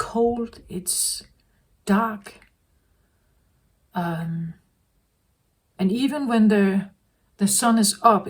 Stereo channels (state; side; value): identical; both; correlation 1.00